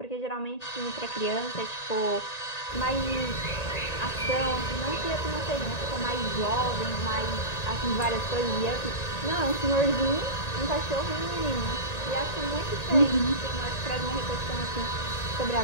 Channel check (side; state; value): right; late; 1.9 ms